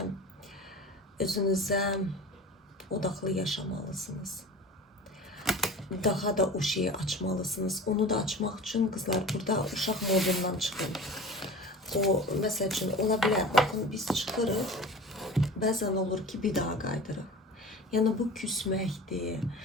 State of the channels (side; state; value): both; normal; correlation 0.37